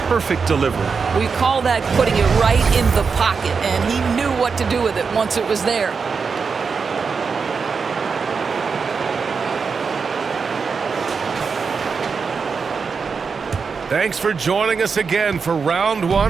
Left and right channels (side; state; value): left; quieter; 5.4 dB